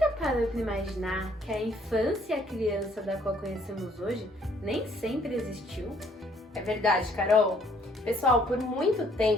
parou para imaginar que a infância e a criança da qual conhecemos hoje nem sempre existiu? É verdade, Carol. Pessoal, por muito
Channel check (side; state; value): both; normal; correlation 0.63